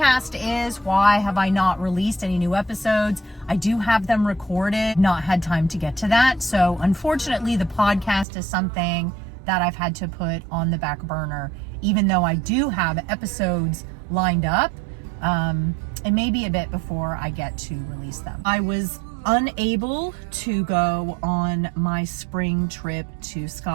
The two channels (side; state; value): left; drops out; at 8.2 s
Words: is. Why have I not released any new episodes? I do have them recorded, not had time to get to that. So unfortunately, the podcast is something that I've had to put on the back burner, even though I do have episodes lined up. It may be a bit before I get to release them. I was unable to go on my spring trip to